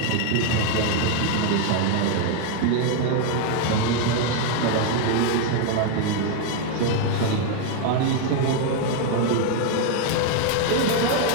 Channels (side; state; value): both; different; correlation 0.00